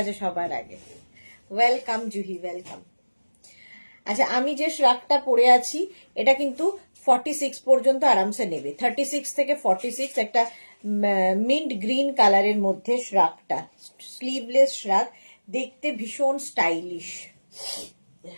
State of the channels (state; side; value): inverted; both; correlation -1.00